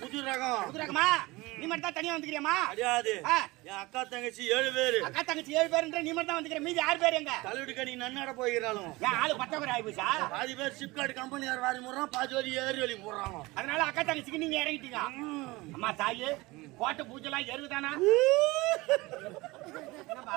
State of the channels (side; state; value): left; quieter; 21.7 dB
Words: புது ரகம். புது ரகமா? நீ மட்டும் தான் தனியா வந்துக்கிறியாமா? கிடையாது. என் அக்கா தங்கச்சி 7 பேரு. அக்கா தங்கச்சி 7 பேருன்ற நீ மட்டும் தான் வந்துக்கிற. மீதி 6 பேர் எங்க? கல்லூரி கடி நன்னட போகிறாளும். ஏன் ஆளு பத்தவரை ஆயிப்போச்சா? பாதி பேர் சிப்காட் கம்பெனியார் வாரி முறான், பாதி வரி ஏறி வலி போடுறாங்க. அதனால அக்கா தங்கச்சிக்கு நீங்க இறங்கிட்டீங்க. அம்மா தாயே கோட்டை பூஜைலாம் எருவுதானா?